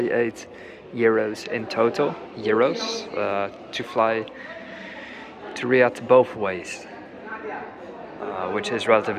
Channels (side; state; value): both; identical; correlation 1.00